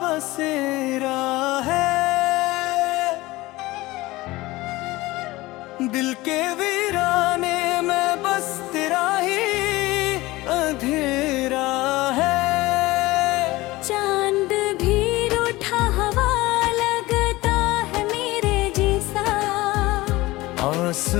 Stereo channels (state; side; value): quieter; right; 19.7 dB